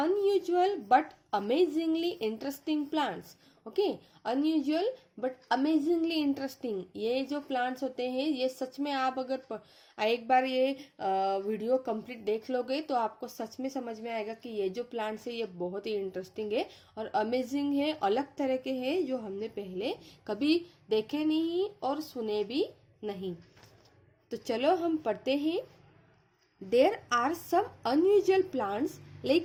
but amazingly interesting plants. Okay, unusual but amazingly interesting, ये जो प्लांट्स होते हैं ये सच में आप अगर एक बार ये वीडियो कंप्लीट देख लोगे तो आपको सच में समझ में आएगा कि ये जो प्लांट्स है ये बहुत ही इंटरेस्टिंग है और अमेजिंग है, अलग तरह के हैं जो हमने पहले कभी देखे नहीं और सुने भी नहीं। तो चलो हम पढ़ते हैं। There are some unusual plants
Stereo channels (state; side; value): identical; both; correlation 1.00